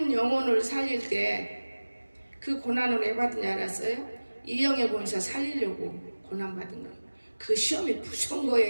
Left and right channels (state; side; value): inverted; both; correlation -1.00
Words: 영혼을 살릴 때 그 고난을 왜 받은 줄 알았어요? 이영애 본사 살리려고 고난 받은 거예요. 그 시험이 무서운